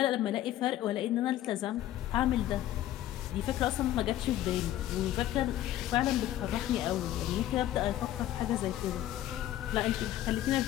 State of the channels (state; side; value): quieter; right; 13.4 dB